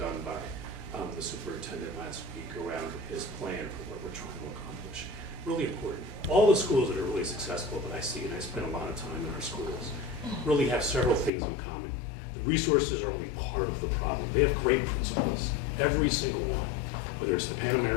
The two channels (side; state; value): right; drops out; at 11.3 s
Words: by the superintendent last week around his plan for what we're trying to accomplish. Really important. All the schools that are really successful that I see, and I spend a lot of time in our schools, really have several things in common. The resources are only part of the problem. They have great principals, every single one, whether it's the Pan